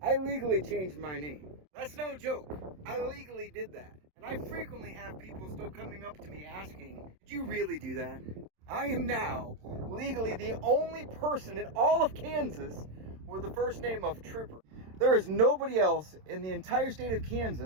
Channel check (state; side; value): late; left; 27 ms